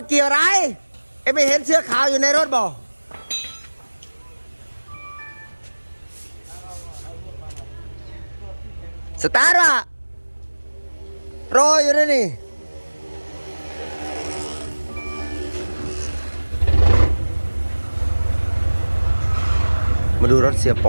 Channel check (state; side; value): inverted; both; correlation -1.00